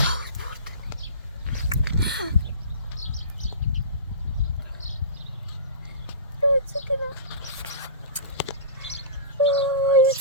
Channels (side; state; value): both; inverted; correlation -0.35